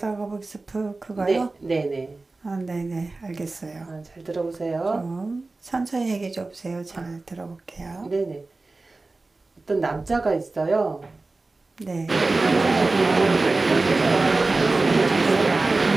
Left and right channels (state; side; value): quieter; left; 3.4 dB